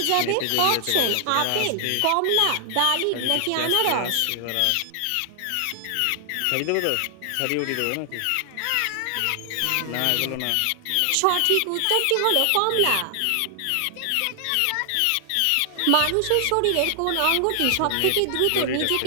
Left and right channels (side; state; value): both; different; correlation 0.00